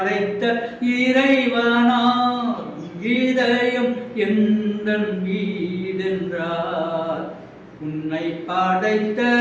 இறைவனார். இதயம் எந்தன் வீடென்றார், உன்னை படைத்த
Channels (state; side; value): identical; both; correlation 1.00